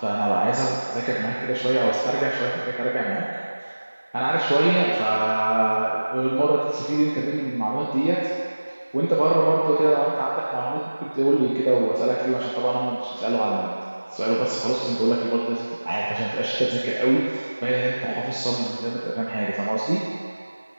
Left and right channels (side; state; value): both; inverted; correlation -1.00